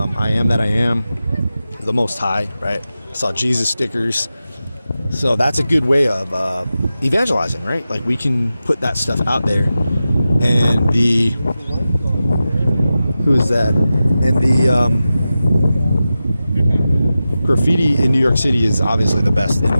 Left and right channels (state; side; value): inverted; both; correlation -0.93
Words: am that I am, the Most High, right? I saw Jesus stickers. So that's a good way of evangelizing, right? Like, we can put that stuff out there. And who is that? And the graffiti in New York City is obviously the best in